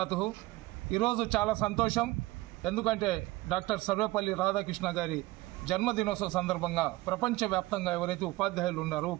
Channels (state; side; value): quieter; left; 19.3 dB